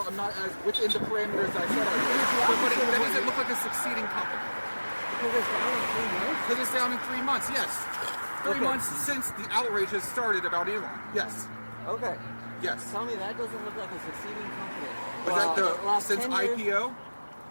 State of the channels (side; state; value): both; inverted; correlation -1.00